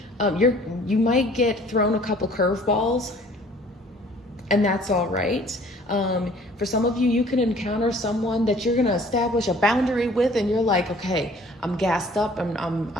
You might get thrown a couple curveballs, and that's all right. For some of you, you can encounter someone that you're gonna establish a boundary with, and you're like, okay, I'm gassed up.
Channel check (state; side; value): normal; both; correlation 0.53